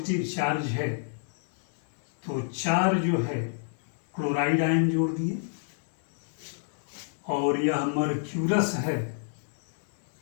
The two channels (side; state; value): right; silent; 58 dB below the other